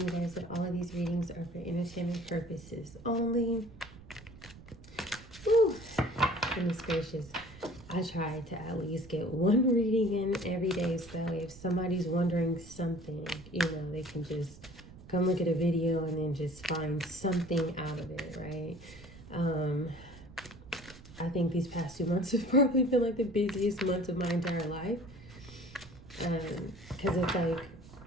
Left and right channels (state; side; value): noise; right; rumble, 18 dB below the sound